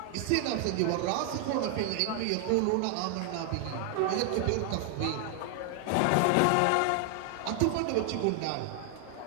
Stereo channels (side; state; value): both; different; correlation 0.00